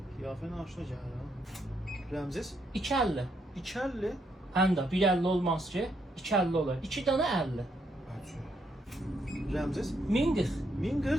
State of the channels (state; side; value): normal; both; correlation 0.76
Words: Qiyafən aşına gəlir ha. Rəmziz? 250. 250. Həm də 150 olmaz ki, 250 olur. 2 dana 50. Rəmziz? 1040.